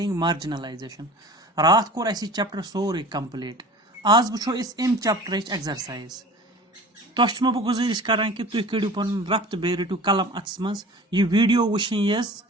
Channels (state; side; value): normal; both; correlation 0.41